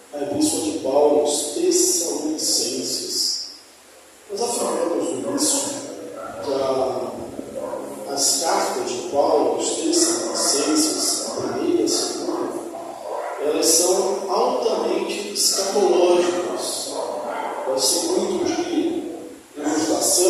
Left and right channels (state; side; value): identical; both; correlation 1.00